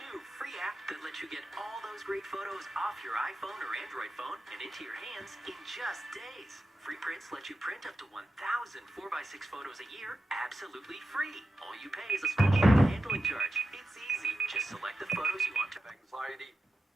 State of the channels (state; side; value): normal; both; correlation 0.91